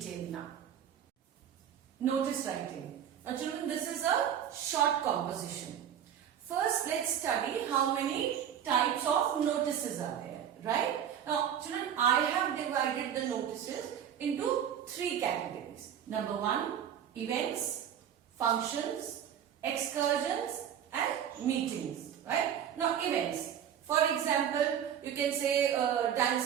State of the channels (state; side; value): quieter; left; 9.3 dB